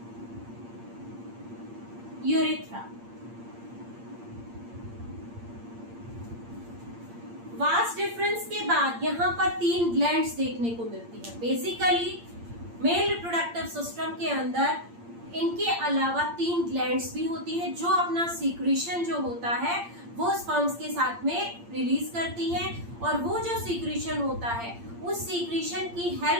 urethra. Vast difference के बाद यहाँ पर 3 ग्लैंड्स देखने को मिलती है। बेसिकली मेल रिप्रोडक्टिव सिस्टम के अंदर इनके अलावा 3 ग्लैंड्स भी होती है जो अपना सीक्रेशन जो होता है वो स्पर्म्स के साथ में रिलीज करती है, और वो जो सीक्रेशन होता है उस सीक्रेशन की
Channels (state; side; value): late; left; 8.7 ms